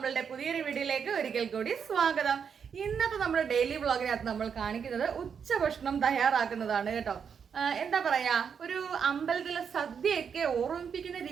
പുതിയൊരു വീഡിയോയിലേക്ക് ഒരിക്കൽ കൂടി സ്വാഗതം. ഇന്നത്തെ നമ്മുടെ ഡെയിലി വ്ളോഗിനകത്ത് നമ്മൾ കാണിക്കുന്നത് ഉച്ചഭക്ഷണം തയ്യാറാക്കുന്നതാണ് കേട്ടോ. എന്താ പറയാ, ഒരു അമ്പലത്തിലെ സദ്യയൊക്കെ ഓർമ്മിപ്പിക്കുന്ന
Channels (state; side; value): quieter; left; 6.9 dB